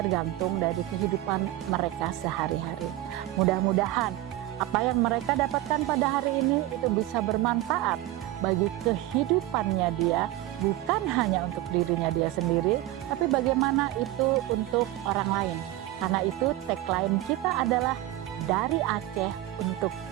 dari kehidupan mereka sehari-hari. Mudah-mudahan apa yang mereka dapatkan pada hari ini itu bisa bermanfaat bagi kehidupannya dia, bukan hanya untuk dirinya dia sendiri, tapi bagaimana itu untuk orang lain. Karena itu tagline kita adalah dari Aceh untuk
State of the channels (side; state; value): left; quieter; 15.6 dB